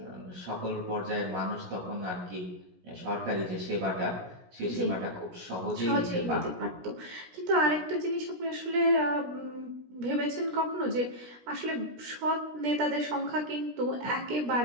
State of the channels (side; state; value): left; late; 17 ms